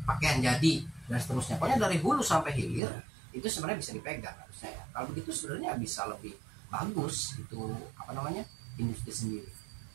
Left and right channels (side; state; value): left; drops out; at 2.8 s